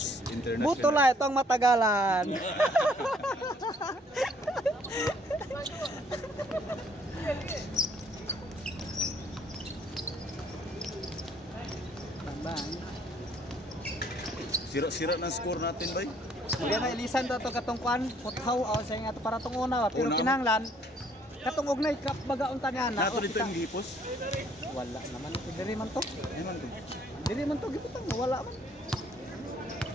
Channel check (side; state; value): both; normal; correlation 0.63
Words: International. Buto la itong matagalan. Sira-sira ng score natin, bay. Kaya na ilisan to katong kwan, puthaw o sa nga to para tong una, pero Una. kinahanglan katong ugnay kap bagaunta niya na. Nato dito yung gipos. Wala naman diri man to. Ayun to. Diri man to giputang wala man.